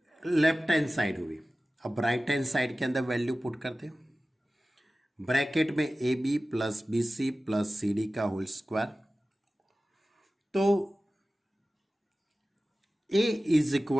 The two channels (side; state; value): both; normal; correlation 0.96